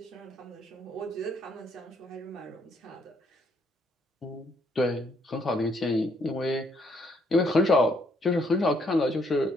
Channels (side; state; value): both; normal; correlation 0.70